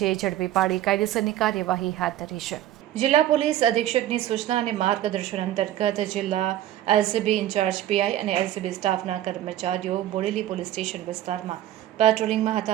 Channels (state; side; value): quieter; left; 13.0 dB